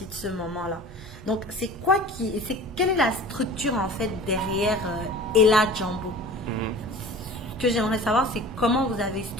de ce moment-là. Donc quelle est la structure en fait derrière Ella Jambo? Mhm. Ce que j'aimerais savoir, c'est comment vous avez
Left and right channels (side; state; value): both; normal; correlation 0.40